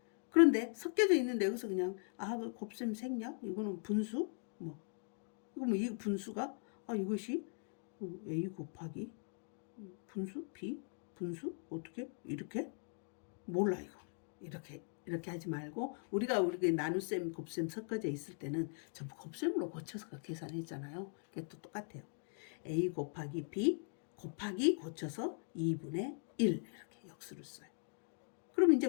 그런데 섞여져 있는데 여기서 그냥 그 곱셈 생략? 이거는 분수? 이 분수가 이것이 A 곱하기 분수? B? 분수? 어떻게? 이렇게? 몰라 이거. 이렇게 하지 말고 우리가 나눗셈, 곱셈 섞어져 있을 때는 전부 곱셈으로 고쳐서 계산했잖아요. 그게 또 똑같아요. A 곱하기 B 곱하기 고쳐서 2분의 1 이렇게 역수를 써요. 그럼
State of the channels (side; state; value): right; silent; 51 dB below the other